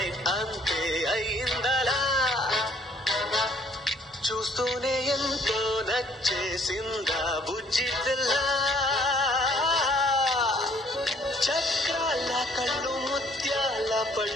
అంతే అయిందలా చూస్తూనే ఎంతో నచ్చేసిందా బుజ్జి పిల్ల చక్రాల కళ్ళు ముత్యాల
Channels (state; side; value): normal; both; correlation 0.61